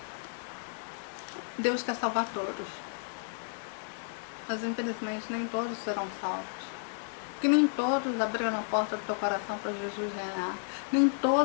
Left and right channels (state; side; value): silent; right; digital silence